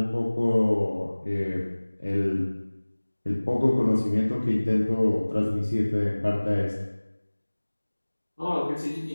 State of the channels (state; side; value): inverted; both; correlation -1.00